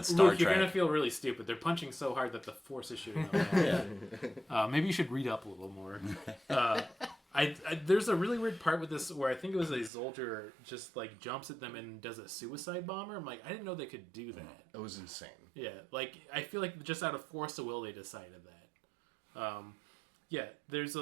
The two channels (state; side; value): drops out; left; at 9.9 s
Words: Star Luke, Trek. you're gonna feel really stupid. They're punching so hard that the force is shooting out. Maybe you should read up a little more. There's a really weird part with this where I think it was a soldier just like jumps at them and does a suicide bomber. I'm like, I didn't know they could do that. It was insane. Yeah, like I feel like just out of force of will they decided that. Yeah, there's